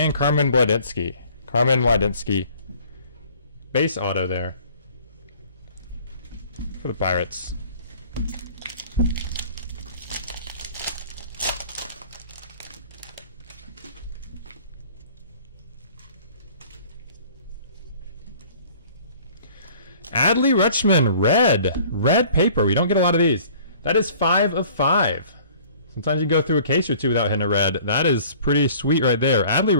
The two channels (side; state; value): both; inverted; correlation -0.51